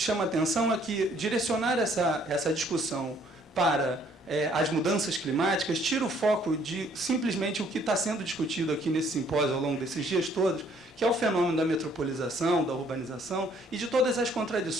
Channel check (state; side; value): normal; both; correlation 0.62